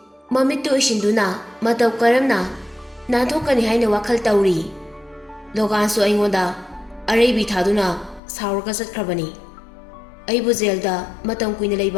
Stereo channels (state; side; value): drops out; right; at 8.2 s